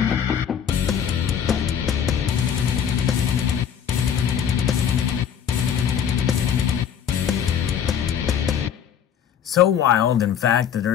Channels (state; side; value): quieter; right; 8.4 dB